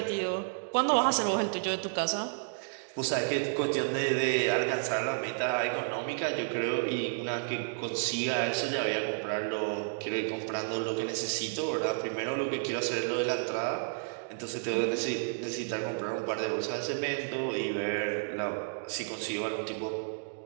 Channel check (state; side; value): silent; left; digital silence